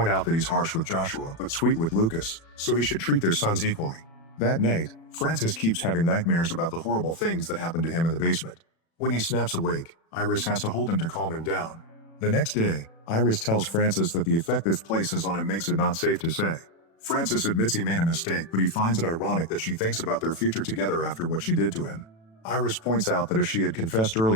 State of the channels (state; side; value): late; right; 36 ms